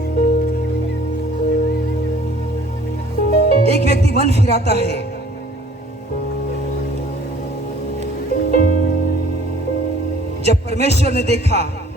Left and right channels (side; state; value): both; normal; correlation 0.54